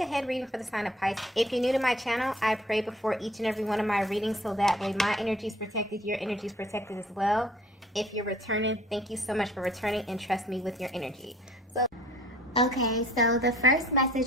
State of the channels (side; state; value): both; normal; correlation 0.54